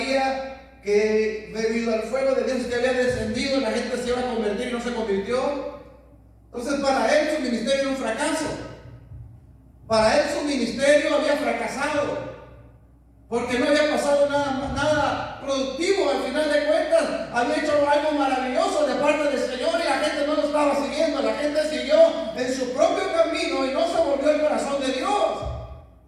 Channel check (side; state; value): both; identical; correlation 1.00